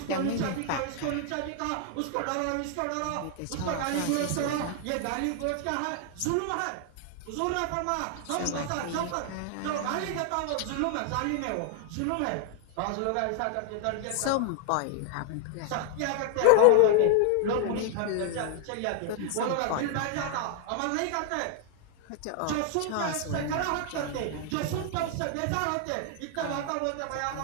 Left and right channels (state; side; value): different; both; correlation 0.00